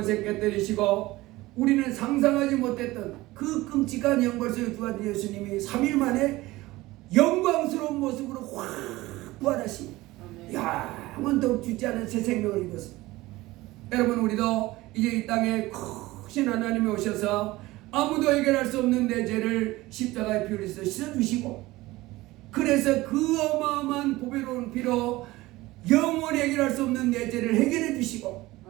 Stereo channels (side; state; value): left; quieter; 19.0 dB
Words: 깨뜨리시고 우리는 상상하지 못했던 그 끔찍한 영벌 속에 부활한 예수님이 3일 만에 영광스러운 모습으로 확 부활하시니 영원토록 죽지 않은 새 생명을 입었습니다. 여러분 우리도 이제 이 땅에 크신 하나님이 오셔서 아무도 해결할 수 없는 내 죄를 십자가에 피 흘려서 씻어주시고 그래서 그 어마어마한 보배로운 피로 영원히 해결할 수 없는 내 죄를 해결해 주시고